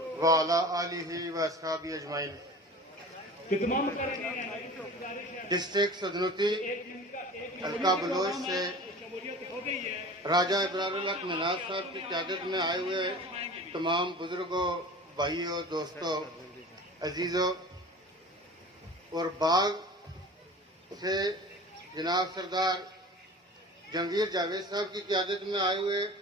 وعلی آلہ و اصحابہ اجمعین۔ ڈسٹرکٹ سدنوتی حلقہ بلوچ سے راجہ ابرار الحق مناز صاحب کی قیادت میں آئے ہوئے تمام بزرگوں، بھائیوں، دوستوں، عزیزوں اور باغ سے جناب سردار جہانگیر جاوید صاحب کی قیادت میں آئے ہوئے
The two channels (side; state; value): both; normal; correlation 0.39